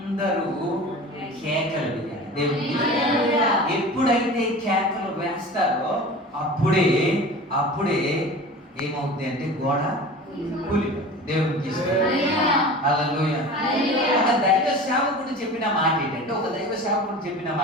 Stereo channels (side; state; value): both; normal; correlation 0.36